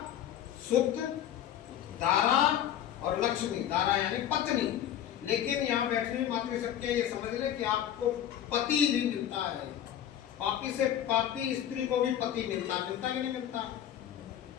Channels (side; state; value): right; quieter; 10.7 dB